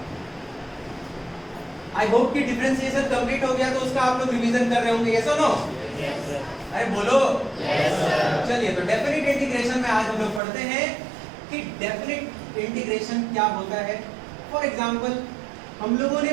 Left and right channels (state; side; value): drops out; left; at 10.4 s